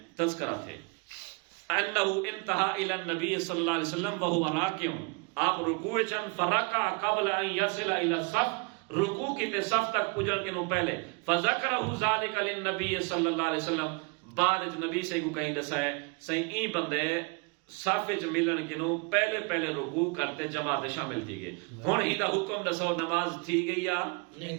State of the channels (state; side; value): quieter; left; 32.0 dB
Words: تذکرہ تھے انہ انتہا الی النبی صلی اللہ علیہ وسلم وہو راکع، آپ رکوع چن فرکع قبل ان یصل الی الصف، رکوع کی تے صف تک پجن کے نو پہلے، فذکرہ ذالک للنبی صلی اللہ علیہ وسلم، بعد نبی سے کو کہیں دسا ہے صحیح ای بندے صف وچ ملن کے نو پہلے پہلے رکوع کرتے جماعت شامل تھی گئے۔ ہن ہی دا حکم دسو نماز تھی گئی یا